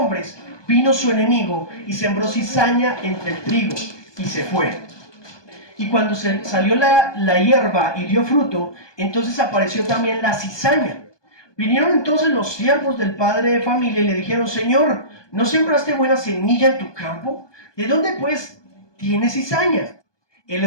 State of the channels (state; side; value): late; right; 1.2 ms